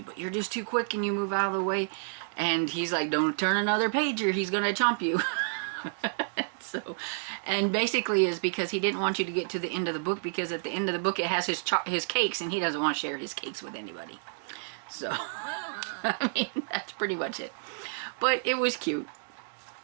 but you're just too quick and you move out of the way. And he's like, don't turn another page or he's going to chomp you. So, and basically is because he didn't want you to get to the end of the book, because at the end of the book it has his cakes and he doesn't want to share his cakes with anybody. So, I mean, that's pretty much it. But it was cute.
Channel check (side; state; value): left; silent; digital silence